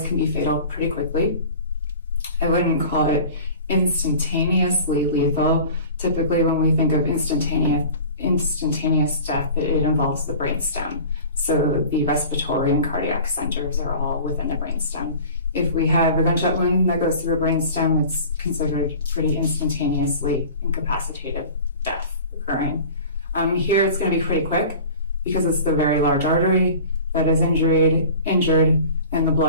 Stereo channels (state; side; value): inverted; both; correlation -0.40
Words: can be fatal pretty quickly. I wouldn't call it instantaneously lethal. Typically, when we think of instantaneous death, it involves the brainstem. So the respiratory and cardiac centers are all within the brainstem. If we have a gunshot wound that goes through a brainstem, it's considered pretty instantaneously incapacitated death occurring. Here it's going to be pretty quick because it's the very large artery that is injured, and the